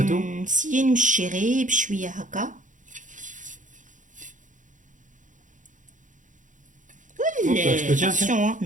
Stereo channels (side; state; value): left; late; 0.37 ms